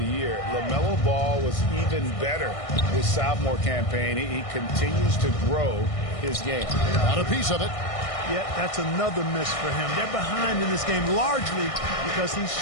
Year, LaMelo Ball was even better his sophomore campaign. He continues to grow his game. Got a piece of it. Yeah, that's another miss for him. They're behind in this game largely because he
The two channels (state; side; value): late; right; 1.6 ms